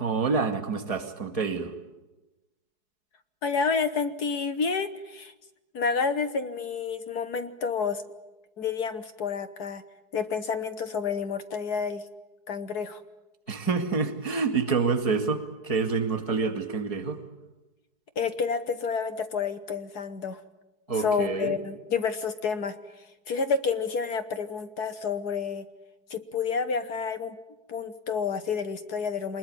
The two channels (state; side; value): late; right; 4.7 ms